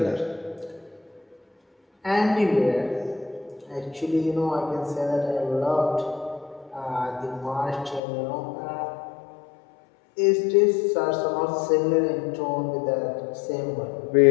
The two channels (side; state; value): right; drops out; at 8.0 s